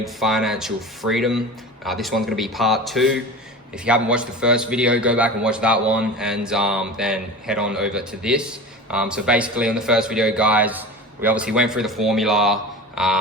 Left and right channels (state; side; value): normal; both; correlation 0.32